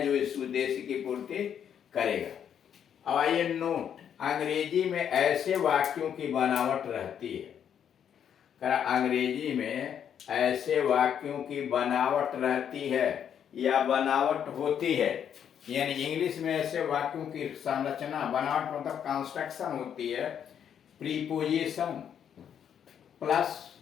जो इस उद्देश्य की पूर्ति करेगा। अब आइए नोट, अंग्रेजी में ऐसे वाक्यों की बनावट रहती है, अंग्रेजी में ऐसे वाक्यों की बनावट रहती है या बनावट होती है। यानी इंग्लिश में ऐसे वाक्यों की संरचना, बनावट मतलब कंस्ट्रक्शन होती है, preposition plus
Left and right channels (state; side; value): quieter; right; 8.7 dB